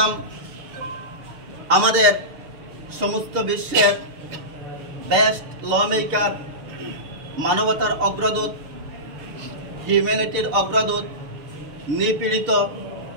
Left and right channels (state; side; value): late; left; 6.7 ms